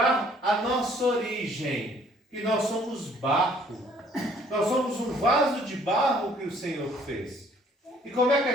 a nossa origem, que nós somos barro. Nós somos um vaso de barro que o Senhor fez. E como é que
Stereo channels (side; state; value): both; normal; correlation 0.60